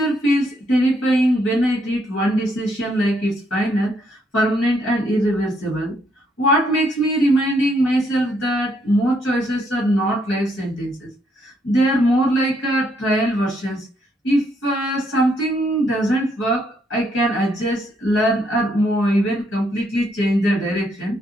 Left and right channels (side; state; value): both; normal; correlation 0.73